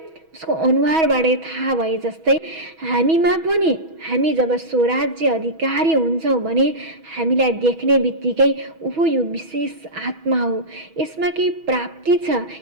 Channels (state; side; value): late; left; 6.2 ms